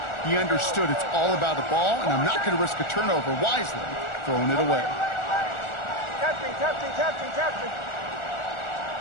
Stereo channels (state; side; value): late; right; 1.4 ms